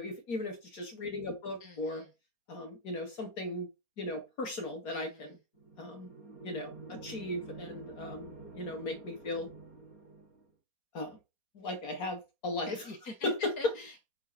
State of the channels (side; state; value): right; late; 4.3 ms